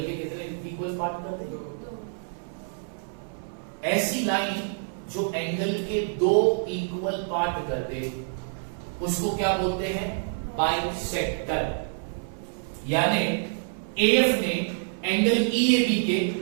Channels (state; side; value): silent; left; 60 dB below the other